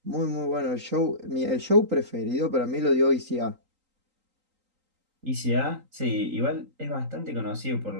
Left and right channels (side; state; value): left; late; 3.8 ms